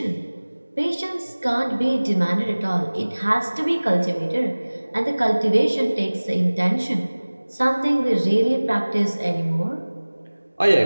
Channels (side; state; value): both; inverted; correlation -1.00